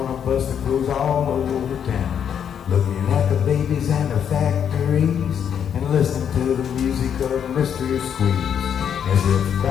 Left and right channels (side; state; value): right; quieter; 8.4 dB